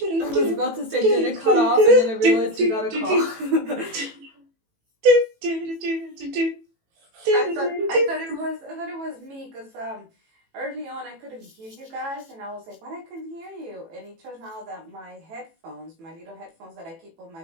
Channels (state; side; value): late; left; 18 ms